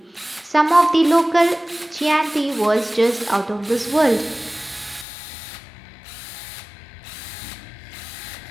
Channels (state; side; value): drops out; right; at 5.1 s